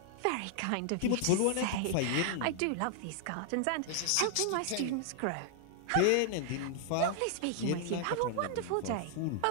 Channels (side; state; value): both; different; correlation 0.00